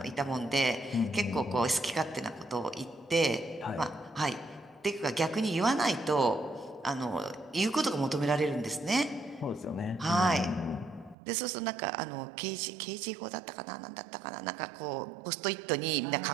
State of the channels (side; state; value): left; drops out; at 11.2 s